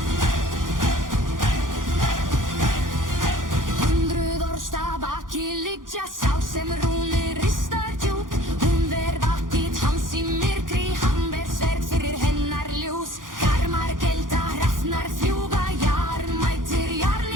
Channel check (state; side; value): late; left; 0.89 ms